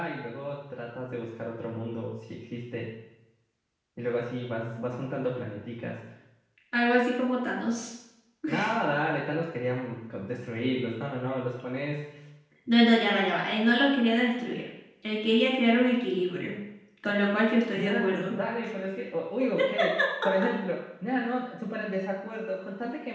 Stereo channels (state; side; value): identical; both; correlation 1.00